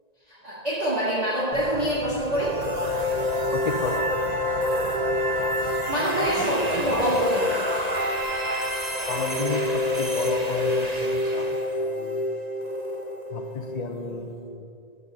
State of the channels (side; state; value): right; late; 1.9 ms